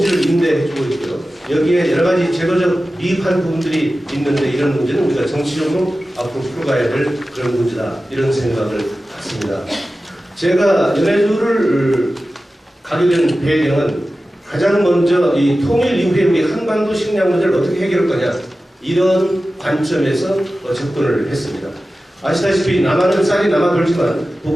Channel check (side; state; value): both; normal; correlation 0.95